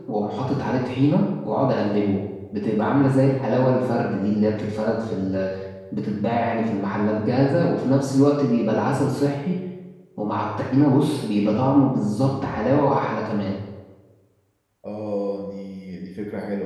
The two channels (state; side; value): identical; both; correlation 1.00